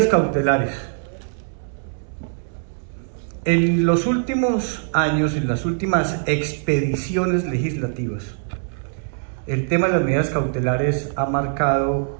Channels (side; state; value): left; silent; 64 dB below the other